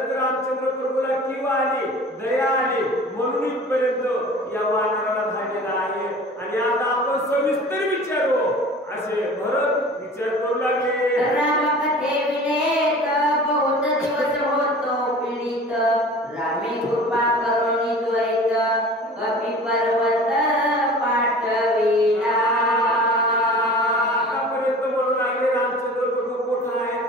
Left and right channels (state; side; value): normal; both; correlation 0.42